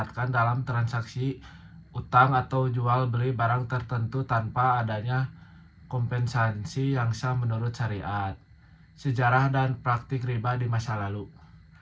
dalam transaksi utang atau jual beli barang tertentu tanpa adanya kompensasi yang sah menurut syariat. Sejarah dan praktik riba di masa lalu.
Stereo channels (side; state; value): both; identical; correlation 1.00